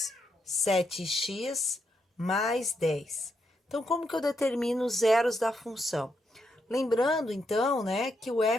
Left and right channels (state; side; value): normal; both; correlation 0.80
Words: 7x mais 10. Então, como que eu determino os zeros da função? Lembrando, então, né, que o